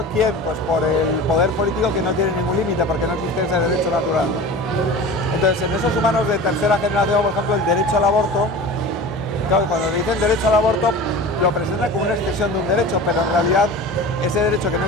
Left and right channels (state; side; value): normal; both; correlation 0.35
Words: ¿quién? Pues por el poder político, que no tiene ningún límite porque no existe ese derecho natural, ¿no? Entonces, en esos humanos de tercera generación, por ejemplo, el derecho al aborto, claro, cuando dicen derecho al aborto lo presentan como una extensión de un derecho, pero en realidad ese derecho que no